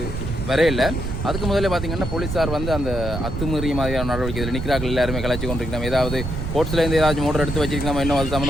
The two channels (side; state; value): right; noise; rumble, 5 dB below the sound